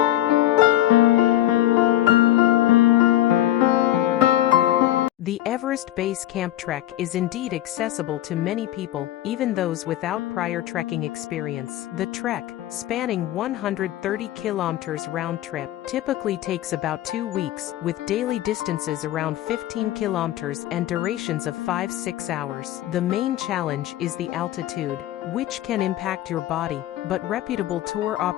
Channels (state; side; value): quieter; right; 13.8 dB